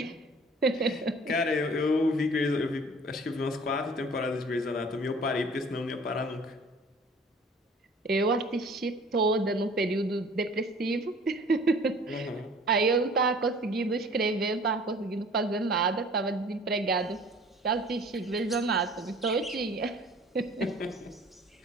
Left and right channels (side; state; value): both; normal; correlation 0.49